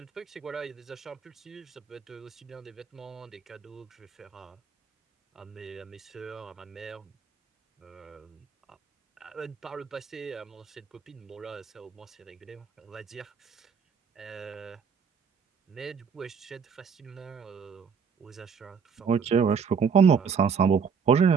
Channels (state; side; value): quieter; left; 6.2 dB